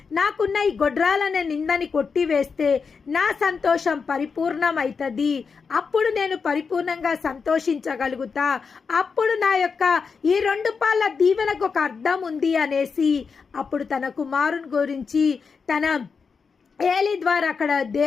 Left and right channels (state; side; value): quieter; right; 5.4 dB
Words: నాకున్న ఈ గొడ్రాలనే నిందని కొట్టివేస్తే నా సంతోషం పరిపూర్ణమవుతుంది. అప్పుడు నేను పరిపూర్ణంగా సంతోషించగలుగుతా. అప్పుడు నా యొక్క ఈ 2 పాల దీవెనకు ఒక అర్థం ఉంది అనేసి అప్పుడు తన కుమారుని గురించి తన ఏలి ద్వారా అక్కడ